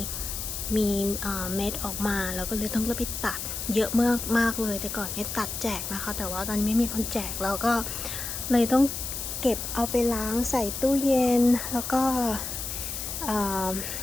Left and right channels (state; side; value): noise; left; hiss, 5 dB below the sound